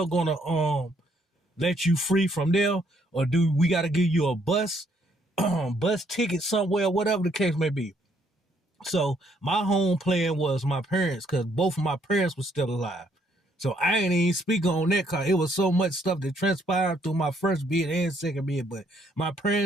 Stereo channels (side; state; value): both; normal; correlation 0.69